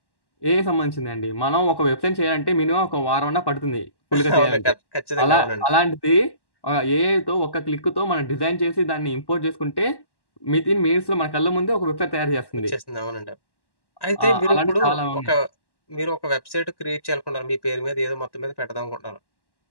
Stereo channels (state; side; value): late; right; 1.1 ms